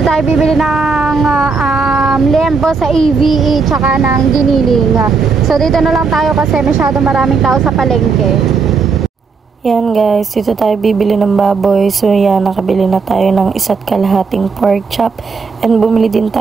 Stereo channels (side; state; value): left; quieter; 4.9 dB